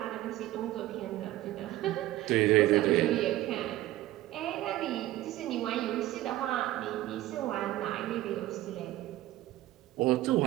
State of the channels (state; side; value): quieter; left; 15.5 dB